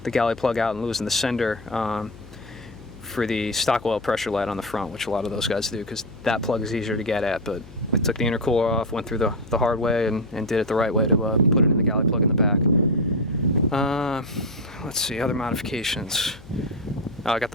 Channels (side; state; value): left; noise; hum, 19 dB below the sound